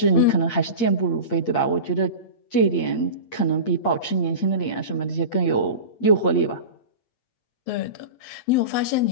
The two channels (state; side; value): late; right; 8.6 ms